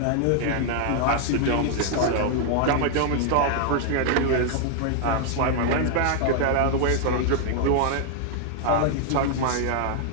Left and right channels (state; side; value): different; both; correlation 0.00